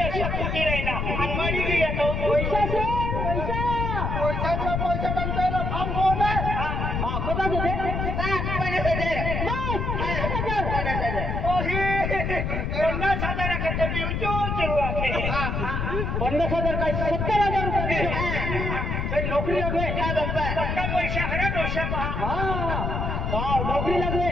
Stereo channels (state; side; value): noise; left; rumble, 1 dB below the sound